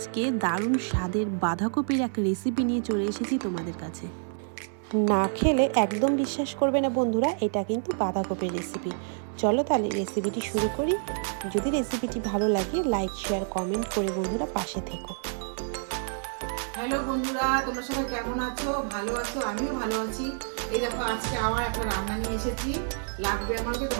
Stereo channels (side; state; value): left; silent; 59 dB below the other